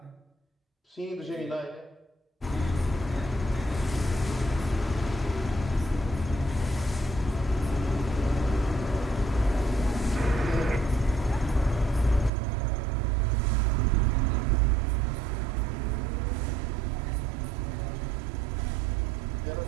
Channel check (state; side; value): drops out; left; at 12.3 s